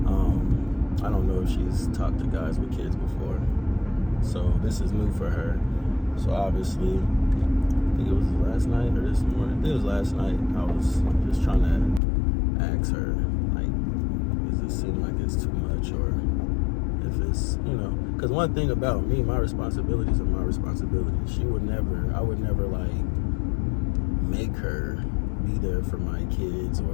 I don't know if she's talked to guys with kids before, so this is new for her. So obviously, I think it was last night or this morning. I think it was last night. I was just trying to ask her, like, does it seem like it's too much, or If it's, because one thing about me, my responsibilities are my responsibilities. I would never like make her be there for my kids,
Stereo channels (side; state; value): right; drops out; at 12.0 s